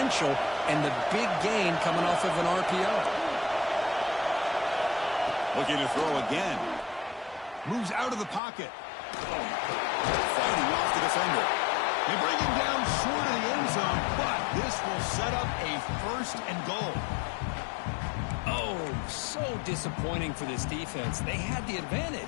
and the big gain coming off of an RPO. Looking to throw again. Moves out of the pocket. Fighting off the defender. They bring him down short of the end zone, but this will set up a 1st and goal. Oh, so disappointing for this defense. They had the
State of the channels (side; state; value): right; drops out; at 8.4 s